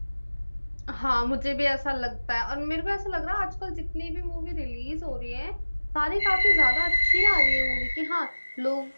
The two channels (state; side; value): inverted; both; correlation -1.00